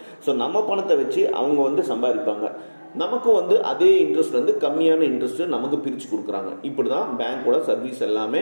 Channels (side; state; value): both; inverted; correlation -1.00